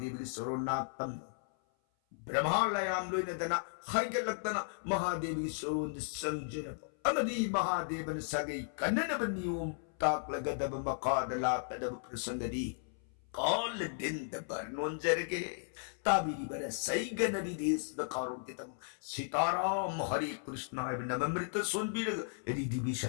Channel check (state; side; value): silent; right; 54 dB below the other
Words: की सोरोनातम ब्रह्मा लयाम लोइन दना हाइगलक्तना महादेव की सोरोंद संजरब अमदी महादेवन सगै कन्ननब नियम ताकलगदब मकादला तदब प्रसंगदी कॉल दिन दबर नोंजरगे ताबिरी बर सही गनरी देश द कारों के तम सीताराम हरे कृष्ण नममृत सोनबीर रिधि